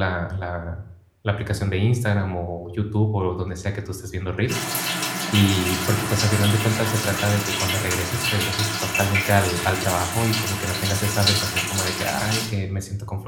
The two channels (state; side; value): identical; both; correlation 1.00